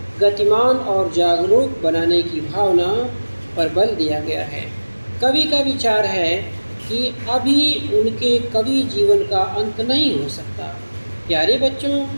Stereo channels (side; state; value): both; inverted; correlation -1.00